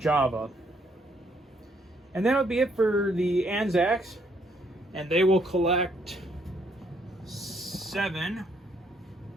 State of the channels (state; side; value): normal; both; correlation 0.70